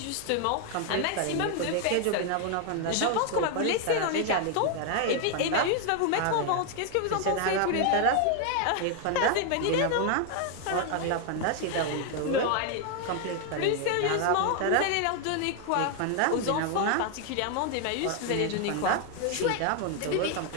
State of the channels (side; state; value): both; different; correlation 0.00